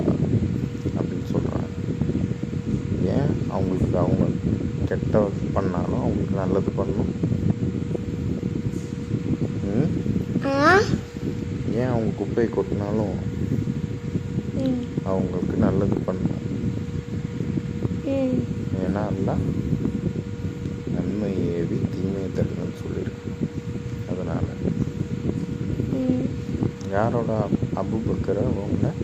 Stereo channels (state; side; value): identical; both; correlation 1.00